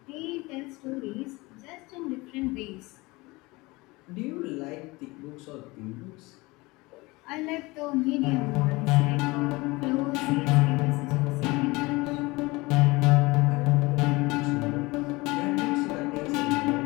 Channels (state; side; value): quieter; right; 22.9 dB